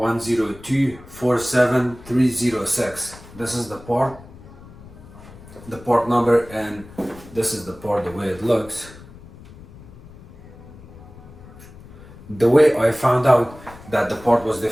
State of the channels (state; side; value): noise; left; rumble, 19 dB below the sound